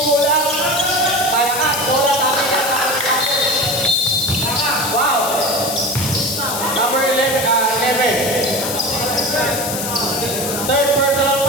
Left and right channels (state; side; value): noise; left; hiss, 4 dB below the sound